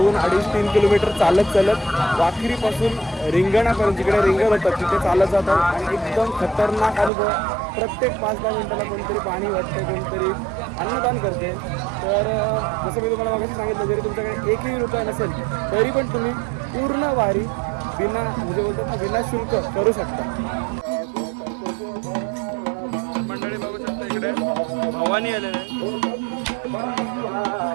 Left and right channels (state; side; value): drops out; left; at 7.1 s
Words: किलोमीटर चालत वाखरीपासून रिंगणापर्यंत जिकडे रिंगण होतं तिथे चालत जातात आणि एकदम खतरनाक अनुभव. प्रत्येक 5-10 मिनिटाला कोणतरी पाणी वाटते, कोणतरी अन्नदान करते. तर जसं मी तुम्हाला मागाशी सांगितलं, जरी तुमच्याकडे एकही रुपया नसेल तरी पण तुम्ही पूर्ण वारी म्हणजे बोलतात ना विना शुल्क करू शकता. मंडळी बघू शकता इकडे भवानी आलेले आहे.